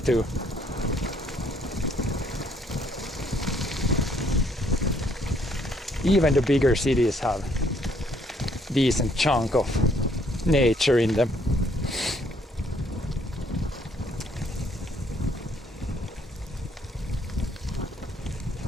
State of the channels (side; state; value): both; normal; correlation 0.66